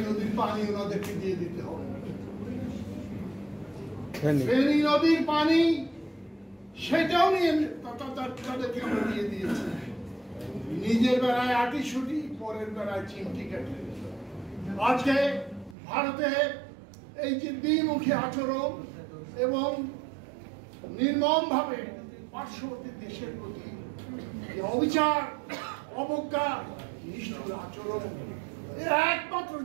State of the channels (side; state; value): left; drops out; at 15.8 s